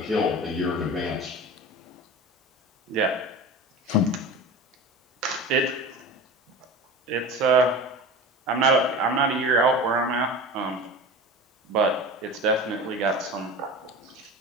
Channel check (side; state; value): both; normal; correlation 0.32